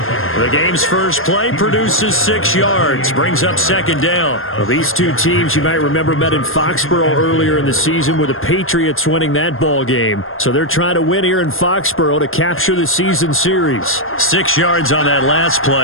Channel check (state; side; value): late; right; 0.60 ms